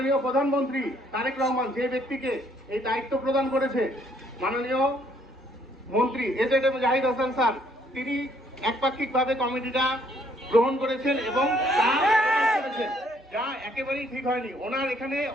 প্রধানমন্ত্রী তারেক রহমান যে ব্যক্তিকে এই দায়িত্ব প্রদান করেছে, মাননীয় মন্ত্রী এজেড জাহিদ হাসান স্যার, তিনি একপাক্ষিকভাবে কমিটিটা গ্রহণ করেছেন এবং তা করেছেন, যা একেবারেই ঠিক হয়নি। ওনার এখানে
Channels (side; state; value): both; normal; correlation 0.66